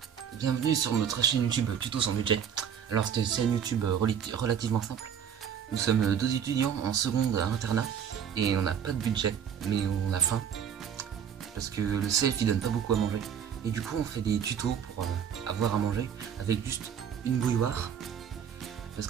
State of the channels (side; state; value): left; quieter; 8.3 dB